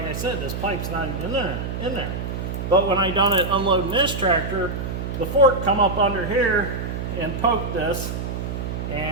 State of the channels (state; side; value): noise; right; hum, 4 dB below the sound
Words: I said, this pipe's not even in there. But when I done it unloading this tractor, the fork come up under here and poked this,